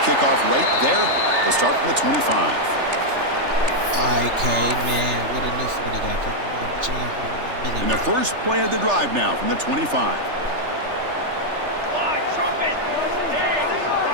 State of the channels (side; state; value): left; late; 3.3 ms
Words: right there. They'll start from the 25. IK, man, what a new 40 got. And the first play of the drive now from the 25.